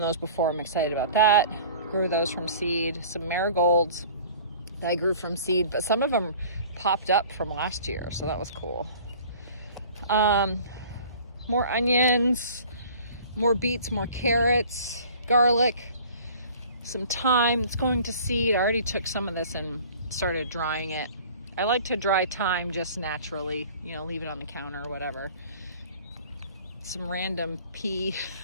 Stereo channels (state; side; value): inverted; both; correlation -0.48